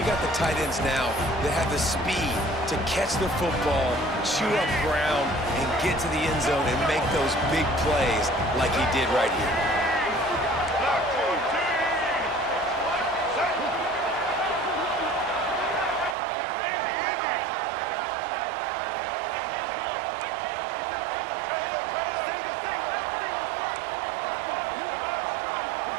got the tight ends now that have the speed to catch the football, chew up ground, and get to the end zone and make those big plays like he did right here.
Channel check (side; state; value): left; drops out; at 16.2 s